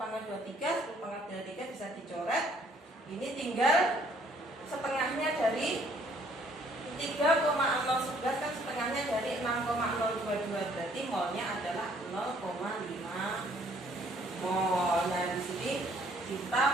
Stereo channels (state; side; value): normal; both; correlation 0.62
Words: 23, 10 pangkat 23 bisa dicoret. Ini tinggal setengahnya dari 3,011 kan setengahnya dari 6,022. Berarti molnya adalah 0,5 mol. Nah, di sini kita